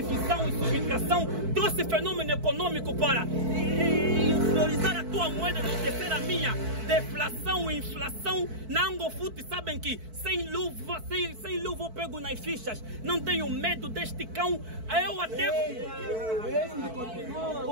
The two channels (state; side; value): late; left; 4.5 ms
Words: e subtração. Trouxe fenômeno econômico para valorizar a tua moeda, enaltecer a minha. Deflação e inflação. Na Angofute sabem que sem luva eu pego nas fichas. Não tenho medo deste cão. Eu até...